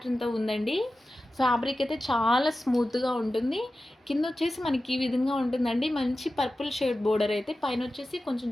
ఉందండి. ఫ్యాబ్రిక్ అయితే చాలా స్మూత్గా ఉంటుంది. కింద వచ్చేసి మనకి ఈ విధంగా ఉంటుందండి, మంచి పర్పుల్ షేడ్ బోర్డర్ అయితే, పైన వచ్చేసి కొంచెం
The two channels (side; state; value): both; normal; correlation 0.94